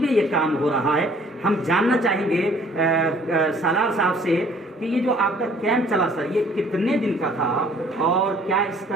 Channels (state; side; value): normal; both; correlation 0.56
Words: ये काम हो रहा है। हम जानना चाहेंगे सालार साहब से कि ये जो आपका कैंप चला सर, ये कितने दिन का था और क्या